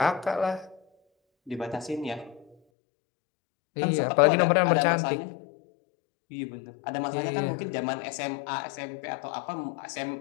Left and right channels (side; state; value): right; drops out; at 2.6 s